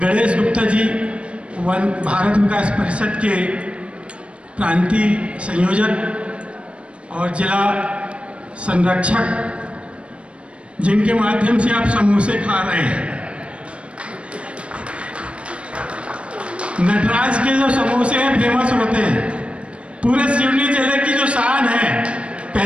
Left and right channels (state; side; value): late; left; 0.060 ms